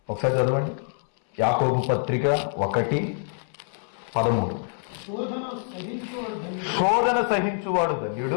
ఒకసారి చదవండి. యాకోబు పత్రిక 1:13. శోధన సహించువాడు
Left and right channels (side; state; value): right; silent; 61 dB below the other